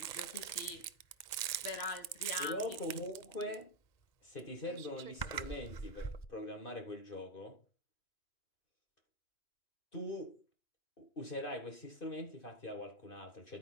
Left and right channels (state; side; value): late; right; 1.9 ms